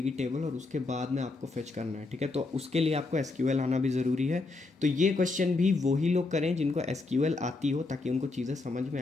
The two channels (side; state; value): right; quieter; 3.5 dB